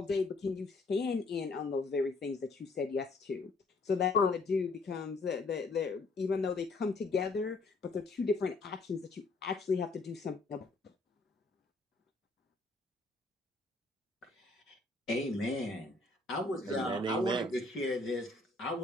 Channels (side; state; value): right; quieter; 3.2 dB